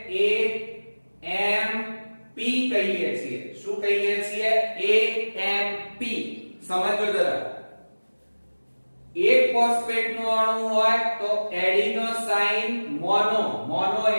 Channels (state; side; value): inverted; both; correlation -1.00